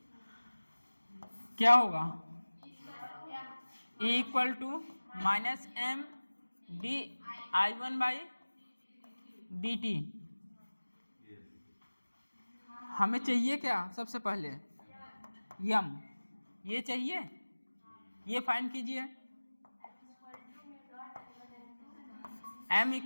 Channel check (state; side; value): inverted; both; correlation -1.00